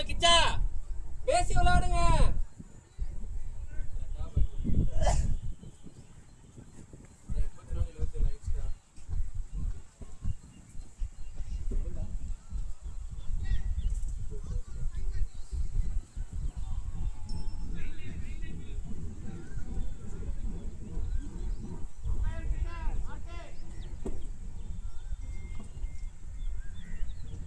கிச்சா பேசி விளையாடுங்க.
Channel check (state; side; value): identical; both; correlation 1.00